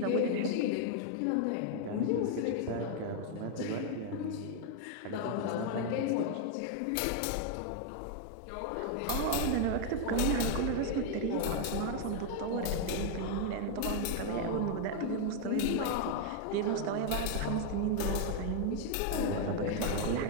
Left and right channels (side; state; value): both; different; correlation 0.00